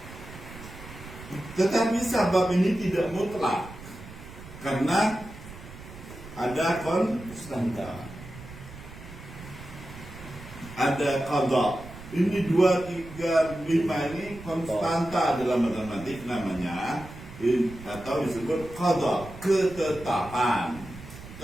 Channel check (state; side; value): noise; right; rumble, 15 dB below the sound